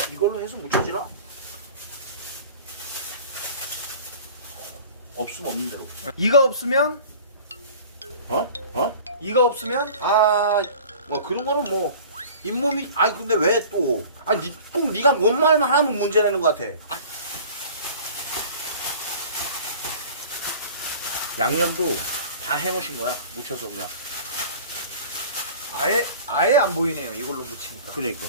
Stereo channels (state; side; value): inverted; both; correlation -0.43